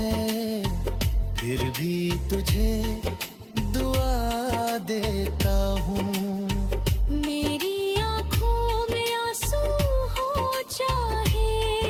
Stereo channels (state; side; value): identical; both; correlation 1.00